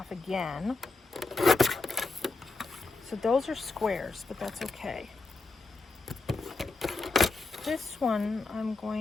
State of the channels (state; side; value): quieter; right; 3.5 dB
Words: again. So those are squares, but that's okay. This one I'm